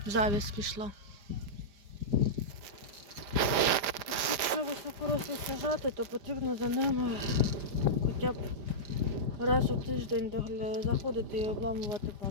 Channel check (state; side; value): late; left; 5.0 ms